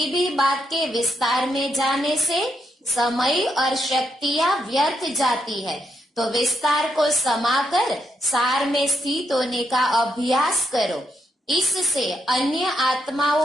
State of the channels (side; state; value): both; normal; correlation 0.79